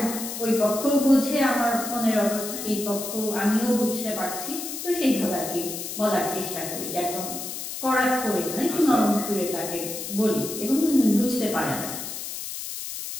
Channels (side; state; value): left; noise; hiss, 7 dB below the sound